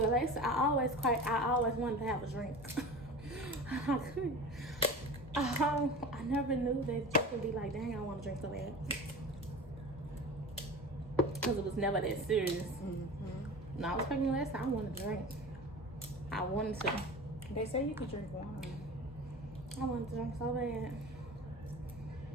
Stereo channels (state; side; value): normal; both; correlation 0.34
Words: Lexi, I always wanted to have a drink. I couldn't. I never knew that you could be like, dang, I want to drink so bad. Because it was never that serious. When I was pregnant last time, I wanted to drink. I wanted to. They say you could drink wine. I wanted to drink so bad.